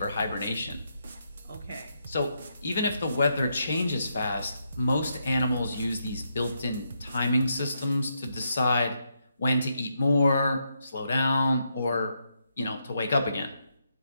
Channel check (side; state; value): both; inverted; correlation -0.80